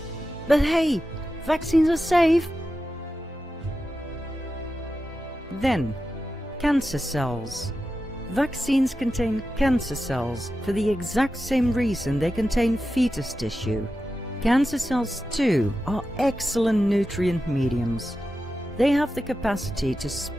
But hey, vaccines are safe. Then, cancer cells. Vaccines contain cancer cells for the exact same reason they contain fetus tissue. Cancer cells too are excellent nutrient mediums. They have the capacity to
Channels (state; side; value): normal; both; correlation 0.91